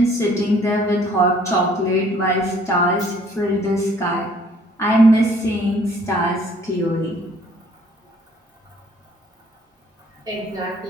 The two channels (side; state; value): both; normal; correlation 0.58